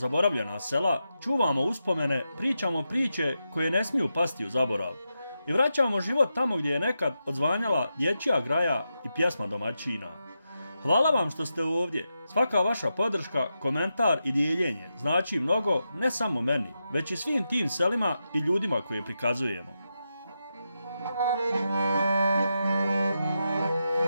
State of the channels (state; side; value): inverted; both; correlation -0.87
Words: sela, čuvamo uspomene, pričamo priče koje ne smiju pasti u zaborav i vraćamo život tamo gdje je nekad odzvanjala dječja graja i pjesma domaćina. Hvala vam što ste ovdje, svaka vaša podrška, komentar i dijeljenje znači mnogo ne samo meni, već i svim tim selima i ljudima koje prikazujemo.